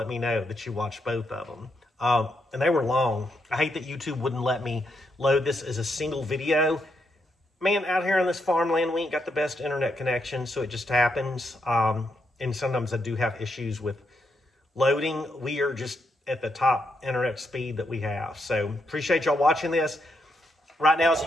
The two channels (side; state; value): both; normal; correlation 0.80